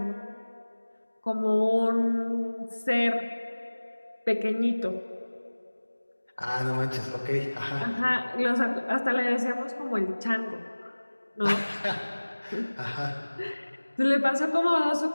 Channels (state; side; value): inverted; both; correlation -1.00